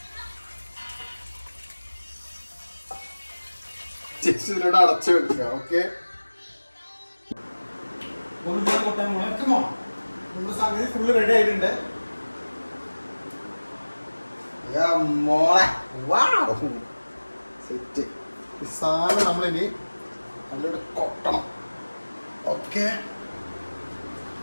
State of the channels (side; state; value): both; inverted; correlation -1.00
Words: ജസ്റ്റ് ഇതിലോട്ട് അടച്ചു വെക്കുക. ഓക്കെ, നമ്മുടെ സംഗതി ഫുള്ള് റെഡി ആയിട്ടുണ്ട്. മോളെ സെറ്റ്. ഈ സാധനം നമ്മളിനി നല്ലോണം കൊട്ടണം. ഓക്കെ,